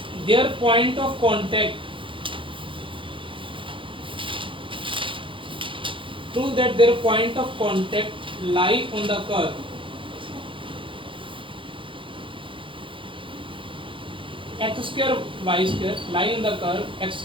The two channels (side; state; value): left; late; 0.25 ms